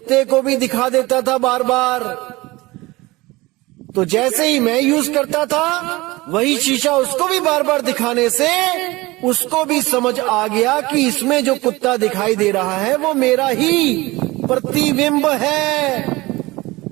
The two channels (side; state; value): left; quieter; 21.1 dB